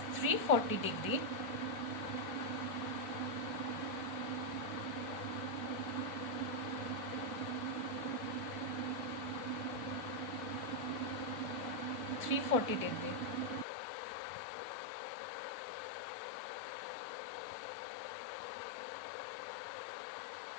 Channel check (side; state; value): right; drops out; at 13.7 s